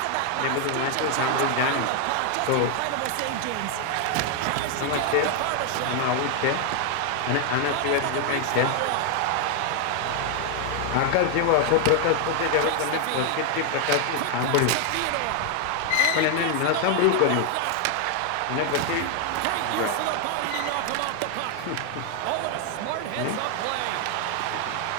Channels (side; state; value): both; different; correlation 0.01